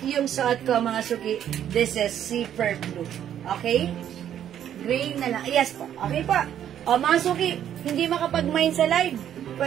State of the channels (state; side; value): quieter; left; 10.2 dB